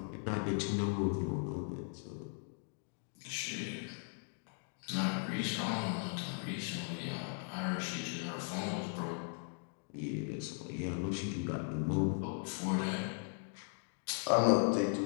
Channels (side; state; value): right; silent; 52 dB below the other